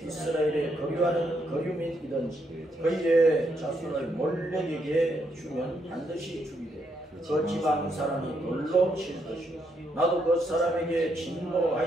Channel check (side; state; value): both; normal; correlation 0.77